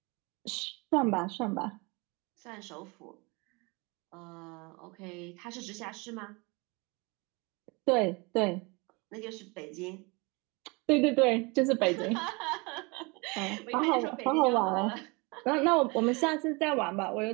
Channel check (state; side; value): quieter; left; 27.9 dB